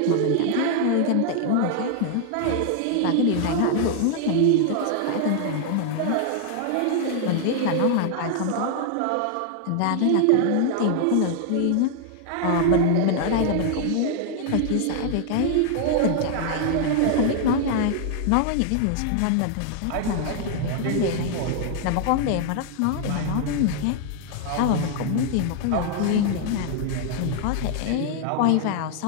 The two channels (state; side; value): different; both; correlation 0.00